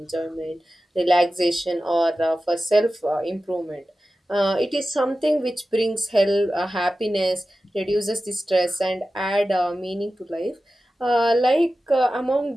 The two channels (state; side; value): normal; both; correlation 0.94